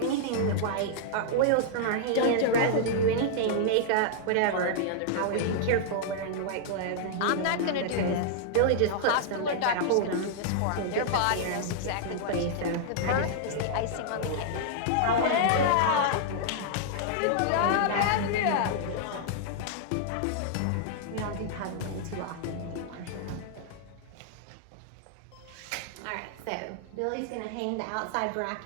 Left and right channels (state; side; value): different; both; correlation -0.01